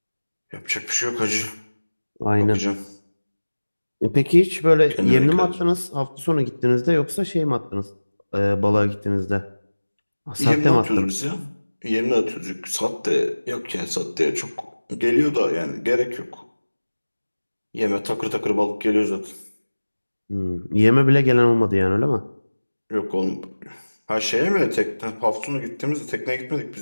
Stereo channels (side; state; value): both; inverted; correlation -1.00